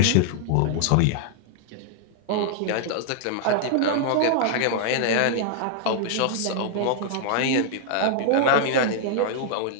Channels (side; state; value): both; different; correlation -0.01